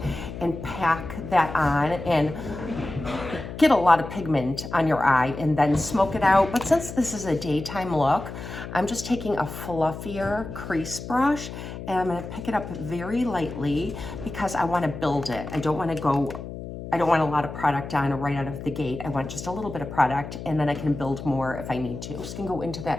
and pack that on and get a lot of pigment on your eye and then smoke it out. But since this is a daytime look, I'm just taking a fluffier crease brush and I'm gonna pick it up very lightly because I wanna build it. I don't want a lot of product on right out of the gate. I want just a little bit of product, and then I can build more if I need to. I'm just gonna go into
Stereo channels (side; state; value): left; noise; hum, 10 dB below the sound